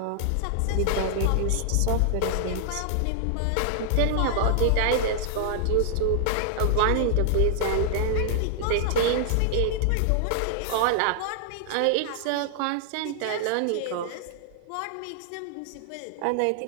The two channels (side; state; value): both; different; correlation -0.01